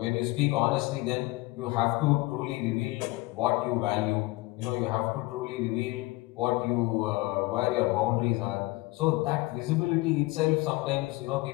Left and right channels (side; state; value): right; quieter; 21.3 dB